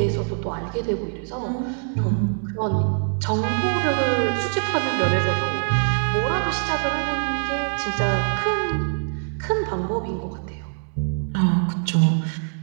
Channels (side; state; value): left; silent; digital silence